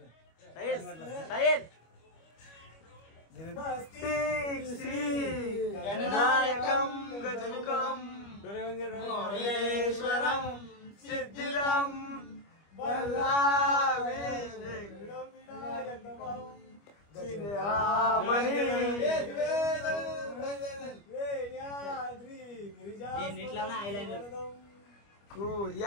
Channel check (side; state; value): right; late; 25 ms